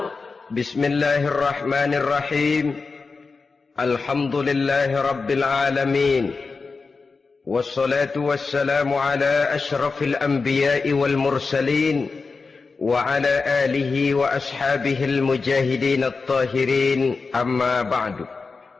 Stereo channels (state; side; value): quieter; right; 4.4 dB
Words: Bismillahirrahmanirrahim. Alhamdulillahi rabbil alamin. Wassalatu wassalamu ala ashrafil anbiya'i wal mursalin wa ala alihi wa ashabihil mujahidin at-tahirin, amma ba'du.